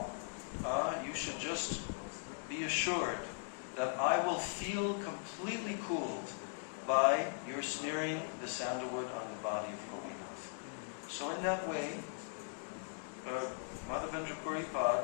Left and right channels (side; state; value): right; silent; digital silence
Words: you should just be assured that I will feel completely cooled by your smearing the sandalwood on the body of Gopinath. So in that way, Madhavendra